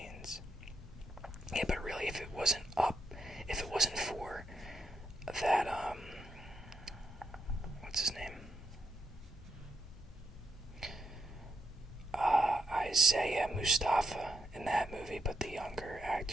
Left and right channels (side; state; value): both; normal; correlation 0.76